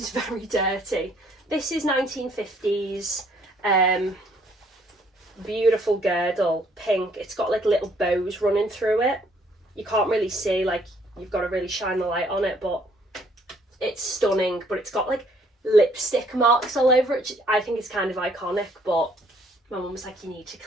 very dirty. This is 1950s, beautiful girdle, pink. It's got like little bows running through it. You can't really see, like you've got to really shine the light on it, but it's stunning. But it's got like lipstick marks all over it. I think it's kind of iconic, but my mum was like, you need to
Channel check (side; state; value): both; normal; correlation 0.64